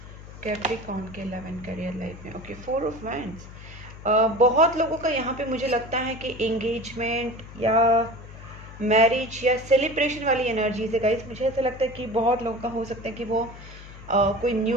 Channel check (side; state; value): left; noise; hum, 16 dB below the sound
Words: Capricorn के love and career life में okay, 4 of wands. बहुत लोगों का यहाँ पे मुझे लगता है कि एंगेजमेंट या मैरिज या सेलिब्रेशन वाली एनर्जीज है गाइस। मुझे ऐसा लगता है कि बहुत लोगों का हो सकता है कि वो कोई